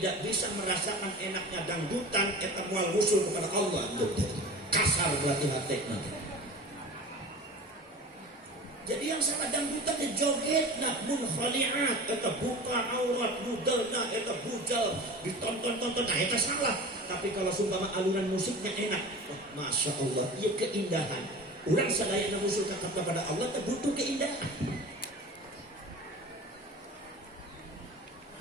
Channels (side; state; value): both; normal; correlation 0.36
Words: bisa merasakan enaknya dangdutan, eta moal usul kepada Allah, kasar berarti hatinya. Jadi yang salah dangdutan di joget nak munkhaliat, eta buka aurat muderna, eta bujal ditonton-tonton, nah eta salah. Tapi kalau sumpama alunan musiknya enak, oh, masya Allah, iya keindahan. Urang sadayana usul kepada Allah teh butuh keindahan.